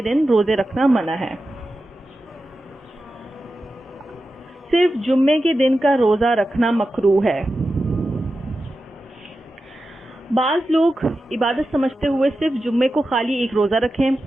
دن روزے رکھنا منع ہے. صرف جمعے کے دن کا روزہ رکھنا مکروہ ہے. بعض لوگ عبادت سمجھتے ہوئے صرف جمعے کو خالی ایک روزہ رکھیں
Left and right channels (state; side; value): normal; both; correlation 0.92